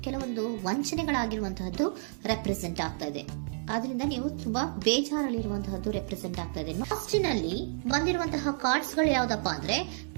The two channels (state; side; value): silent; left; digital silence